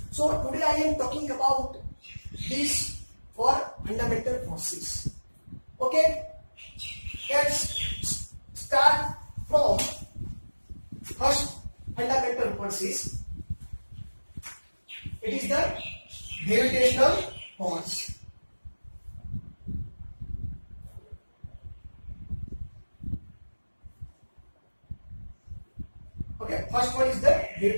So today I am talking about these four fundamental forces. Okay, let's start from first fundamental forces. It is the gravitational force. Okay, first one is the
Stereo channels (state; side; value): inverted; both; correlation -1.00